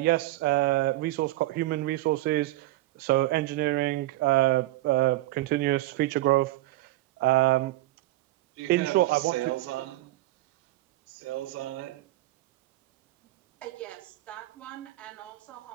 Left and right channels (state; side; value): quieter; left; 17.3 dB